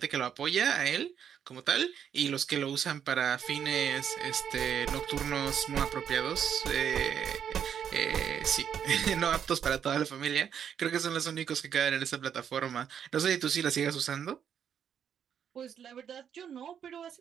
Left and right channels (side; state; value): left; quieter; 8.5 dB